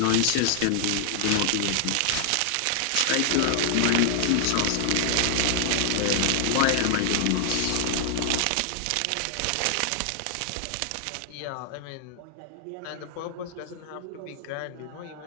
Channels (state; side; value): different; both; correlation -0.01